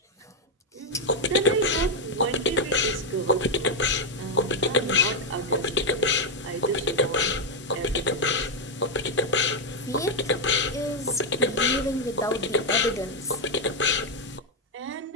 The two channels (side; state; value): both; normal; correlation 0.03